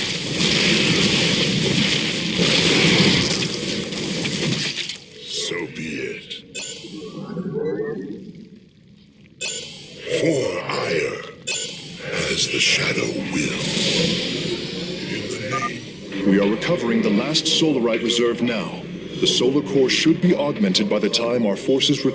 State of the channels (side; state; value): both; identical; correlation 1.00